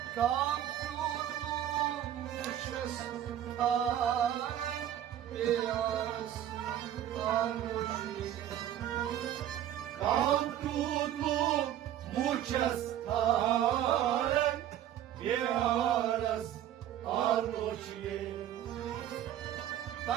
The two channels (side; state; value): left; quieter; 11.4 dB